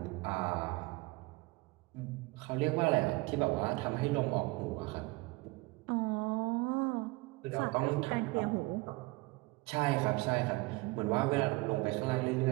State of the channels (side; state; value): left; quieter; 23.6 dB